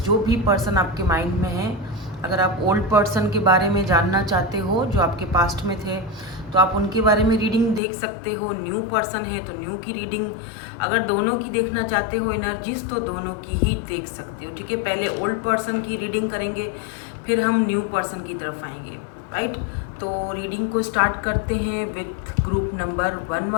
भी पर्सन आपके माइंड में है। अगर आप ओल्ड पर्सन के बारे में जानना चाहते हो जो आपके पास्ट में थे तो आप उनके बारे में रीडिंग देख सकते हो। न्यू पर्सन है तो न्यू की रीडिंग, अगर दोनों की देखना चाहते हो एनर्जीज तो दोनों की ही देख सकते हो। ठीक है, पहले ओल्ड पर्सन की रीडिंग करेंगे, फिर हम न्यू पर्सन की तरफ आएंगे। राइट, तो रीडिंग को स्टार्ट करते हैं विथ ग्रुप नंबर 1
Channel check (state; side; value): drops out; right; at 7.8 s